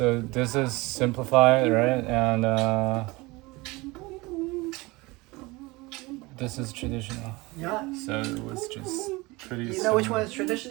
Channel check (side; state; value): left; quieter; 23.0 dB